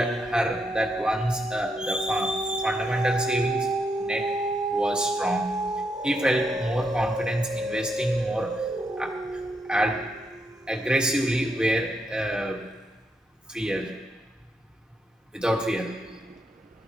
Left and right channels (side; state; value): both; normal; correlation 0.79